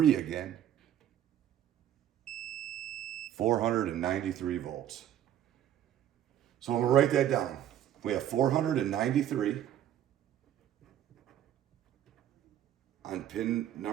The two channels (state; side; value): quieter; left; 11.1 dB